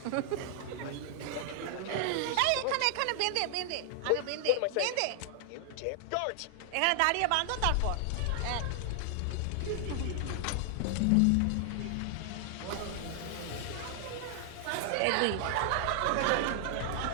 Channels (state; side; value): different; both; correlation 0.00